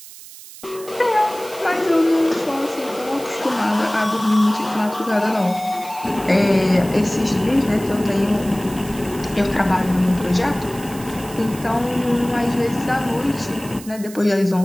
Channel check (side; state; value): right; noise; hiss, 17 dB below the sound